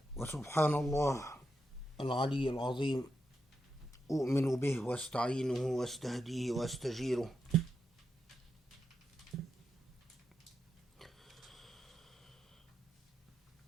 وسبحان الله العلي العظيم أؤمن به واستعينه واستهديه واستجيره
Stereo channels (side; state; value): both; normal; correlation 0.85